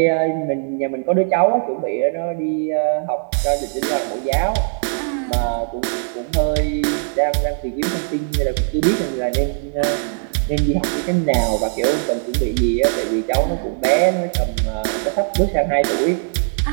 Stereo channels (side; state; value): left; silent; digital silence